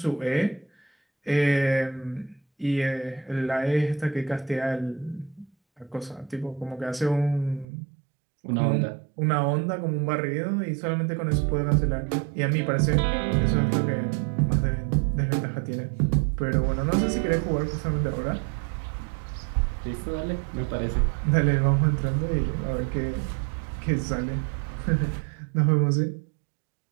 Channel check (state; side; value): drops out; left; at 7.7 s